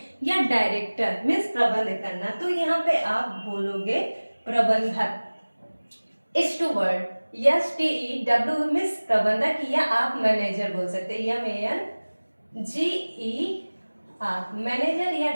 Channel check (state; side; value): inverted; both; correlation -1.00